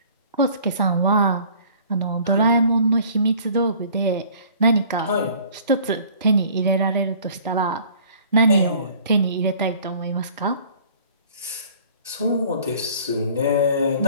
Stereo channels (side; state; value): both; inverted; correlation -0.51